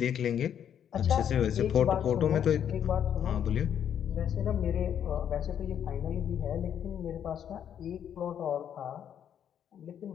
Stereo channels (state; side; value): quieter; right; 9.1 dB